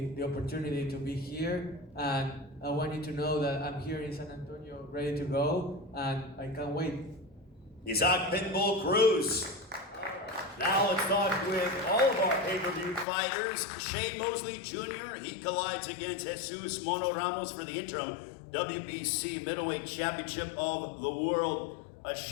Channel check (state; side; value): drops out; right; at 13.1 s